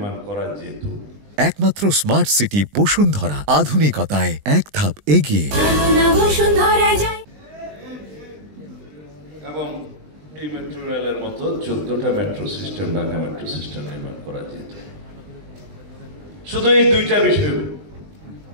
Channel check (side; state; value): left; late; 20 ms